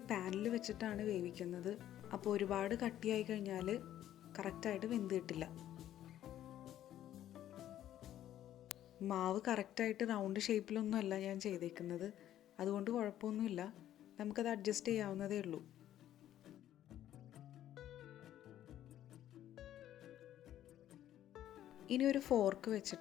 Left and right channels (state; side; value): quieter; right; 12.1 dB